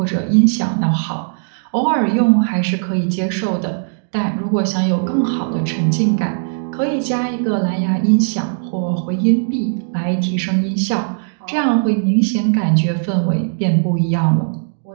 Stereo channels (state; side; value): silent; left; digital silence